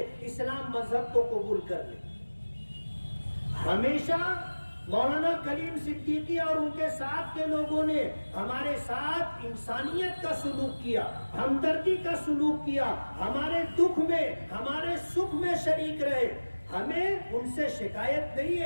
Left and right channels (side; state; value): both; inverted; correlation -1.00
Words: اسلام مذہب کو قبول کر لیں۔ ہمیشہ مولانا کلیم صدیقی اور ان کے ساتھ کے لوگوں نے ہمارے ساتھ انسانیت کا سلوک کیا، ہمدردی کا سلوک کیا، ہمارے دکھ میں ہمارے سکھ میں شریک رہے۔ ہمیں ان سے شکایت نہیں